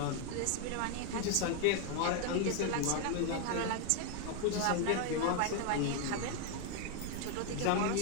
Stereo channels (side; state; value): both; different; correlation 0.00